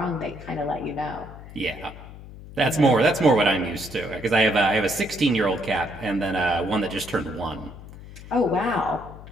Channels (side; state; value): left; noise; hum, 15 dB below the sound